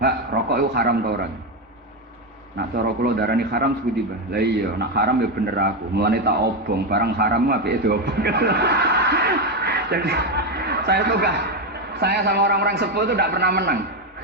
rokok itu haram tau orang?" Nak cara kula darani haram sebuti Mbah. Lah iya, nak haram ya bener aku. Mulane tak obong, barang haram apike diobong. Jadi saya sama orang-orang sepuh itu tidak pernah menang.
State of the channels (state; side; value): normal; both; correlation 0.10